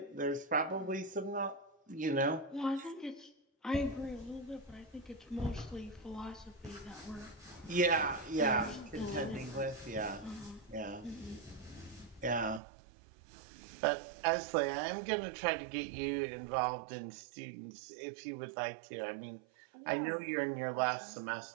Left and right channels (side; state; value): left; drops out; at 12.6 s